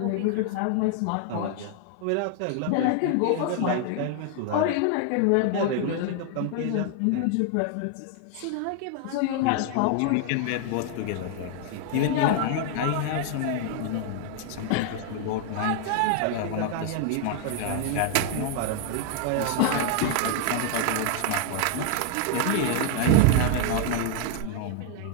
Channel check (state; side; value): different; both; correlation 0.00